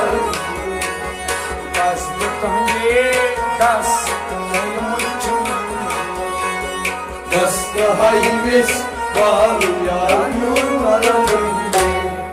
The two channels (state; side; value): identical; both; correlation 1.00